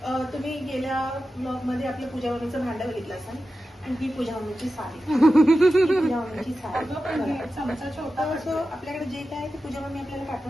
तुम्ही गेल्या ब्लॉग मध्ये आपल्या पूजा मम्मीचं भांडं बघितलं असाल आणि ही पूजा मम्मीची साडी. पूजा मम्मीची साडी चमचा छोटा असं आपल्याकडे जे काय ते पूजा मम्मी आपल्याला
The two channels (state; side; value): normal; both; correlation 0.92